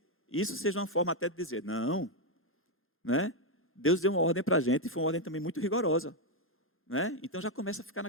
isso seja uma forma até de dizer, não, né? Deus deu uma ordem para a gente e foi uma ordem também muito rigorosa, né? Então já começa a ficar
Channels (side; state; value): both; normal; correlation 0.02